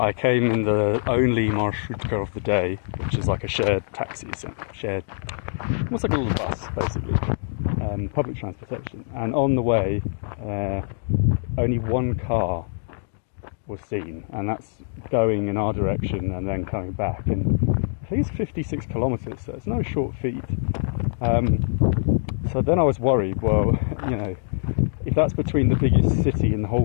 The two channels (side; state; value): right; silent; digital silence